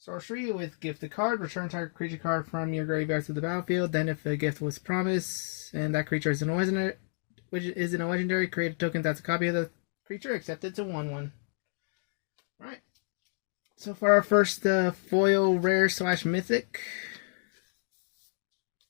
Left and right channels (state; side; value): silent; right; digital silence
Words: with gifted card. Return target creature card from your graveyard to the battlefield. Then if a gift was promised and that creature is in a legendary, create a token that's a copy of the creature, except it's a 1/1. Alright. So for our first foil rare / mythic.